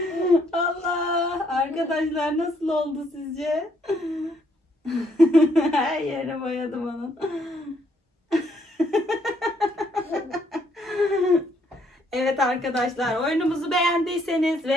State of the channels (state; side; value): normal; both; correlation 0.70